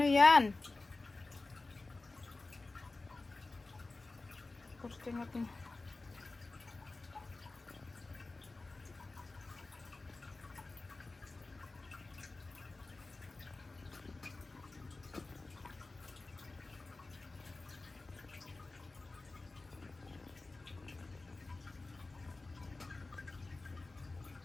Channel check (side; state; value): right; quieter; 3.4 dB